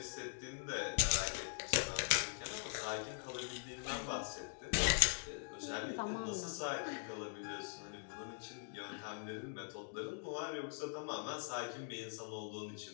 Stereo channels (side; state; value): right; silent; digital silence